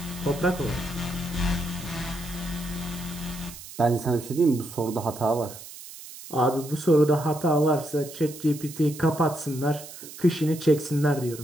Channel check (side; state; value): right; noise; hiss, 14 dB below the sound